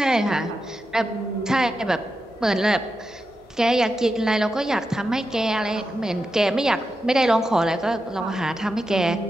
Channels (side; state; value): both; normal; correlation 0.88